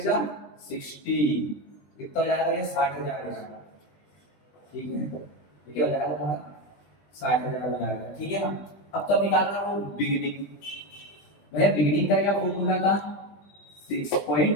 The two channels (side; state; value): right; late; 20 ms